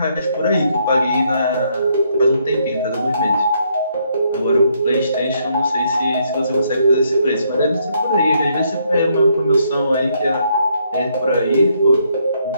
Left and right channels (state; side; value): inverted; both; correlation -0.73